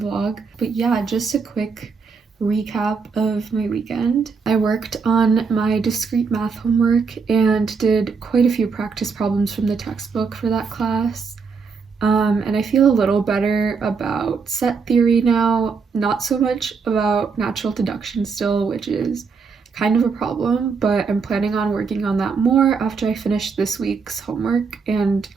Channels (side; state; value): left; quieter; 5.2 dB